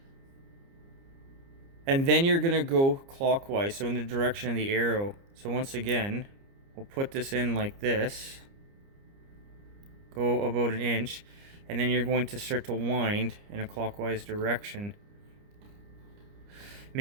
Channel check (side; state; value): left; late; 29 ms